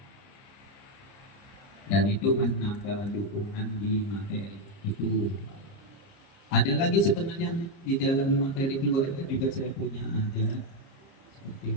Dan itu menambah dukungan di materi itu. Ada lagi sebenarnya di dalam materi keluarga juga saya punya ada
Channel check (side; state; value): right; late; 30 ms